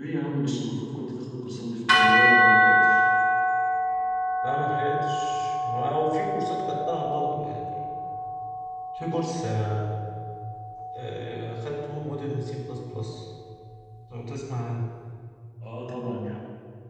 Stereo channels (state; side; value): identical; both; correlation 1.00